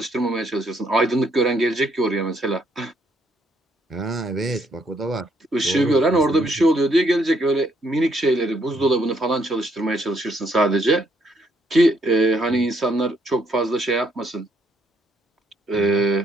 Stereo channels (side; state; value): both; normal; correlation 0.71